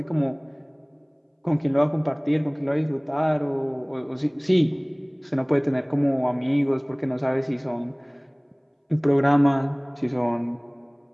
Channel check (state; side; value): identical; both; correlation 1.00